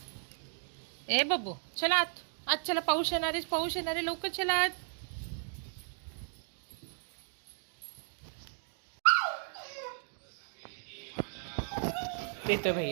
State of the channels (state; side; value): silent; left; 54 dB below the other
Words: ए बब्बू चला आत. आज चला, पाऊस येणार आहे, पाऊस येणार आहे, लवकर चला आत. येतोय